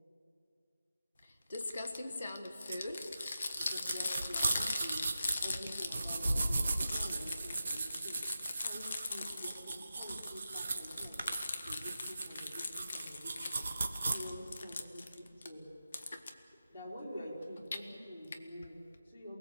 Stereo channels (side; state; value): both; inverted; correlation -0.90